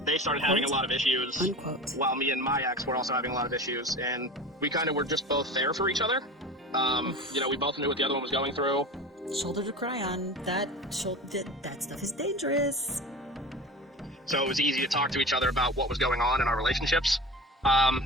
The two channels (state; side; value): normal; both; correlation 0.33